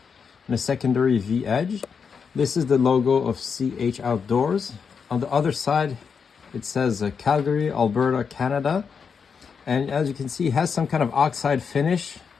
and a secondary V edge. This is the logo of CH Outdoors. On the other side, it says Calgary, Alberta, Canada. And as you can see, it has some kind of oxide finish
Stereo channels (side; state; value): right; quieter; 6.1 dB